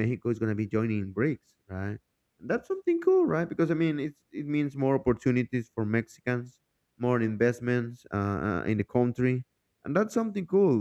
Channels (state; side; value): identical; both; correlation 1.00